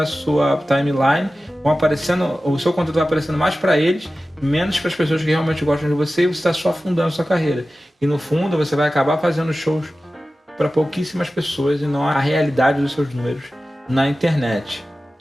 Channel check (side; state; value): both; normal; correlation 0.95